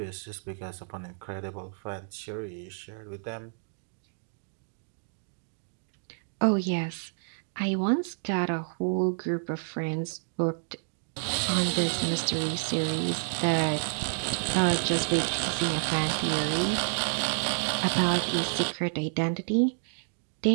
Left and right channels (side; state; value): left; silent; digital silence